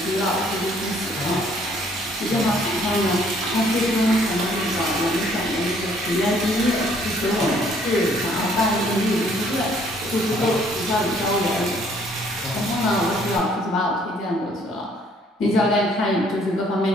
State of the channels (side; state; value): both; normal; correlation 0.62